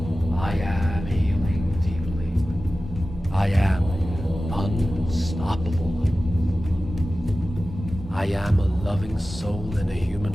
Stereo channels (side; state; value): both; normal; correlation 0.95